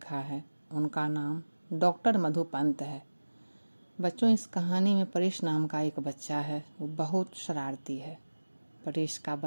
है उनका नाम डॉक्टर मधु पंत है। बच्चों, इस कहानी में परेश नाम का एक बच्चा है। वो बहुत शरारती है। परेश का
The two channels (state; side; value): inverted; both; correlation -1.00